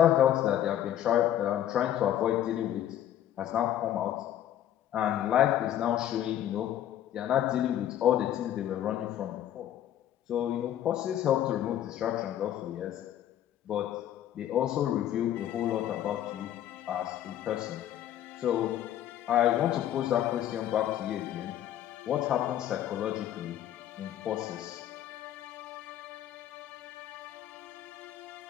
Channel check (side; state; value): right; quieter; 11.5 dB